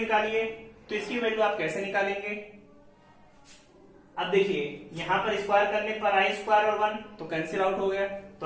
तो इसकी वैल्यू आप कैसे निकालेंगे। अब देखिए यहां पर स्क्वायर करने पर आई स्क्वायर और 1 तो कैंसिल आउट हो गया, तो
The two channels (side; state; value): both; identical; correlation 1.00